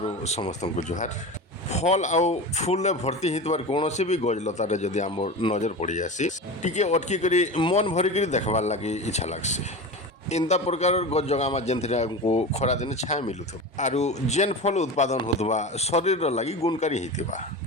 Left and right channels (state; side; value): normal; both; correlation 0.28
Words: समस्त को जुहार फल आउ फूल भर्ती होइतबार कौन भी गजलतार जदि आम नजर पड़ जासी टिके अटकी करी मन भरिक देखबार लगी इच्छा लगसी। इंता प्रकार गज जगामा जेनथिरे हमको खरा दिन छाया मिलुथबा आरु जेन फल उत्पादन होतबा शरीर लगी गुणकारी होइतिबा।